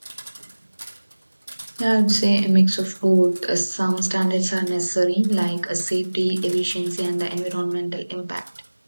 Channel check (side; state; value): both; inverted; correlation -1.00